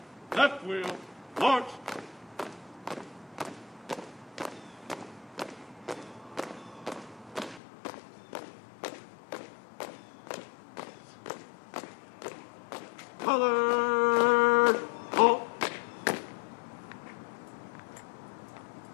left wheel, march. Color, halt.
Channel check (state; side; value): drops out; right; at 7.6 s